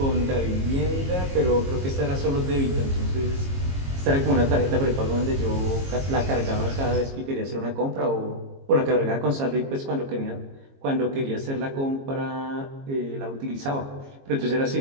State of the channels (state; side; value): late; left; 22 ms